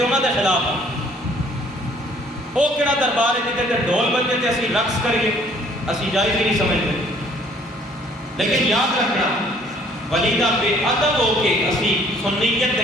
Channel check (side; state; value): both; normal; correlation 0.59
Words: انہاں دے خلاف ہاں۔ وہ کہڑا دربار ہے جتے تے ڈھول بجے تے اسی رقص کریے، اسی جائز ہی نہیں سمجھتے۔ لیکن یاد رکھنا، ولی دا بے ادب ہو کے اسی سنیت